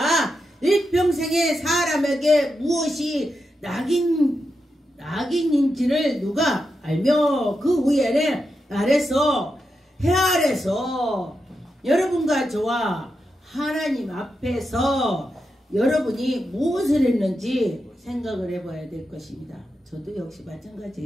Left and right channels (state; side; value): normal; both; correlation 0.87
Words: 일평생에 사람에게 무엇이 낙인인지를 누가 알며 그 후에는 해 아래서 여러분과 저와 하나님 앞에서 여러분이 무엇을 했는지 생각을 해봐야 될 것입니다. 저도 역시